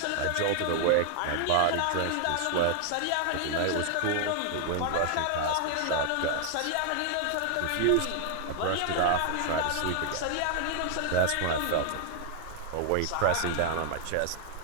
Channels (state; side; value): different; both; correlation 0.00